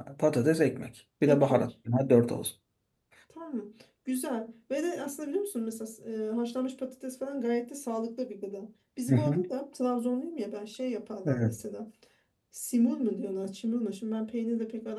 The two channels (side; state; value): both; identical; correlation 1.00